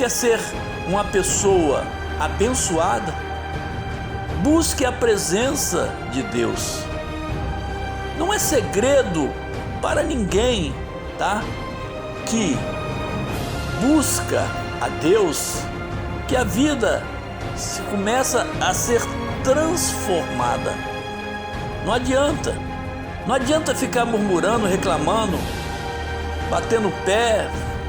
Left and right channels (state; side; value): identical; both; correlation 1.00